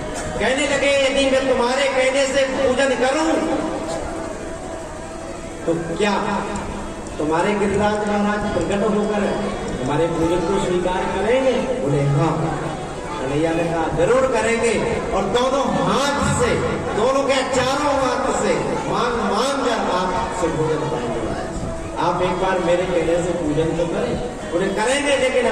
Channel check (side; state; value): both; identical; correlation 1.00